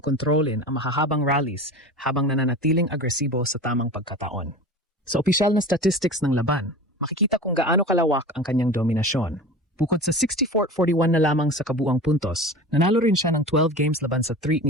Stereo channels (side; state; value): both; normal; correlation 0.34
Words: ang mahahabang rallies habang nananatiling agresibo sa tamang pagkataon. Sa opisyal na statistics ng laban, makikita kung gaano kalawak ang kanyang dominasyon. Bukod sa 64-41 na lamang sa kabuang puntos, nanalo rin siya ng 12 games laban sa 3